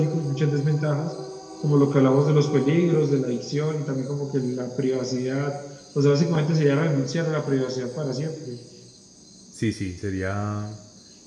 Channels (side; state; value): both; identical; correlation 1.00